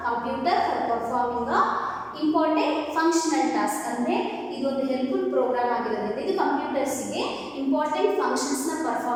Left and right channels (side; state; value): both; identical; correlation 1.00